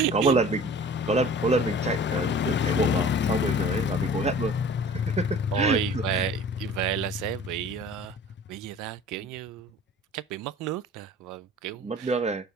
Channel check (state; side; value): normal; both; correlation 0.44